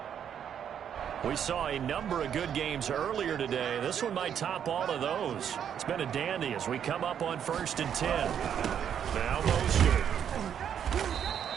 We saw a number of good games earlier today. This one might top all of those. It's been a dandy as we come up on 1st and 10. Now Mostert.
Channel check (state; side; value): quieter; left; 8.7 dB